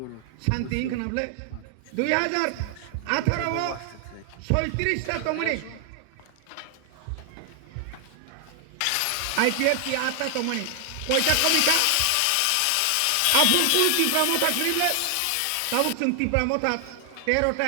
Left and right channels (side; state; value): both; different; correlation 0.00